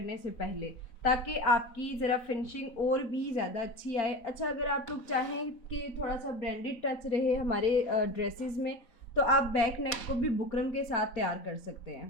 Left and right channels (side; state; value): right; late; 4.0 ms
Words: से पहले, ताकि आपकी ज़रा फिनिशिंग और भी ज़्यादा अच्छी आए। अच्छा, अगर आप लोग चाहें कि थोड़ा सा ब्रांडेड टच रहे हमारे ड्रेसेस में, तो आप बैक नेक को भी बुकरम के साथ तैयार कर सकते